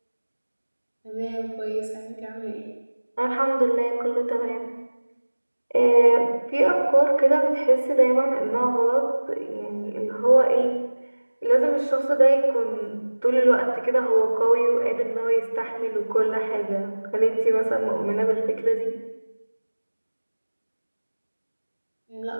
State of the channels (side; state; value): both; inverted; correlation -1.00